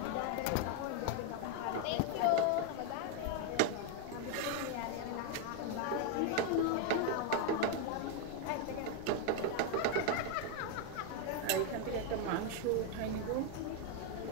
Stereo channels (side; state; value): both; different; correlation 0.01